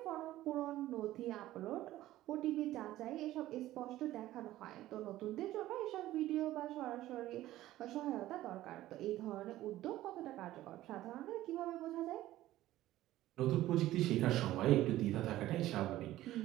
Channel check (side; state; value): left; quieter; 15.1 dB